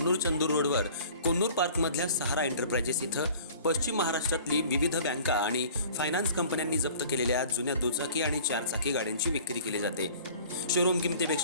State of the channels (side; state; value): both; inverted; correlation -0.47